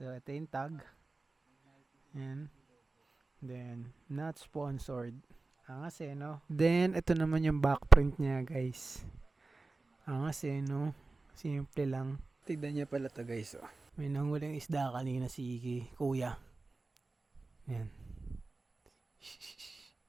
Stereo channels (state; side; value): quieter; left; 3.4 dB